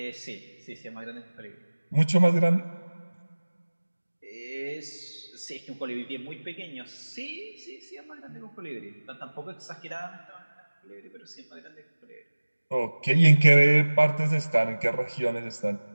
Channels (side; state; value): both; inverted; correlation -1.00